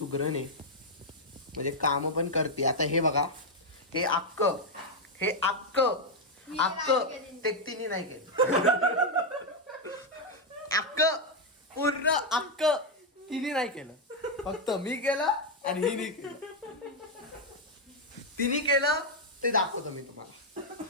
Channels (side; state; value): both; normal; correlation 0.01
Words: आहे, म्हणजे काम पण करते. आता हे बघा हे अक्क ते तिने नाही केलं. पूर्ण अक्क तिने नाही केलं, फक्त मी केलं आणि हिने केलं. तिने केलं ते दाखवतो मी तुम्हाला,